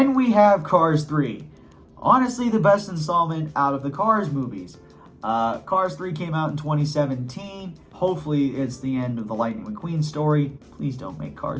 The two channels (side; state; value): both; identical; correlation 1.00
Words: we have Cars 3. Honestly, the best installment out of the Cars movies. Cars 3 came out in 2017. Hopefully, it's the end of the Lightning McQueen story. Please don't make